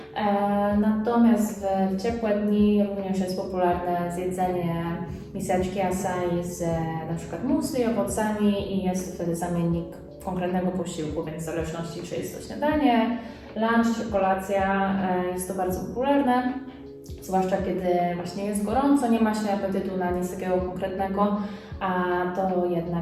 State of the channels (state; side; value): identical; both; correlation 1.00